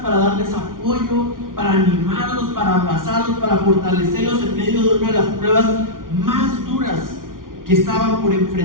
para darles apoyo, para animarlos, para abrazarlos, para fortalecerlos en medio de una de las pruebas más duras que estaban por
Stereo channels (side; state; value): left; late; 0.90 ms